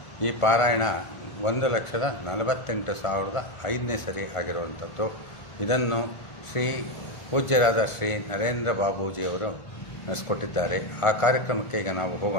ಈ ಪಾರಾಯಣ 1,48,500ನೇ ಸರಿ ಆಗಿರುವಂಥದ್ದು. ಇದನ್ನು ಶ್ರೀ ಪೂಜ್ಯರಾದ ಶ್ರೀ ನರೇಂದ್ರ ಬಾಬೂಜಿಯವರು ನಡೆಸ್ಕೊಟ್ಟಿದ್ದಾರೆ. ಆ ಕಾರ್ಯಕ್ರಮಕ್ಕೆ ಈಗ ನಾವು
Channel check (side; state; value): right; late; 1.5 ms